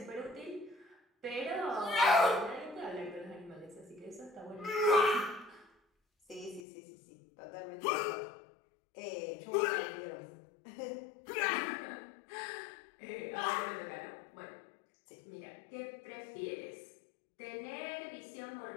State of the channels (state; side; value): drops out; right; at 6.6 s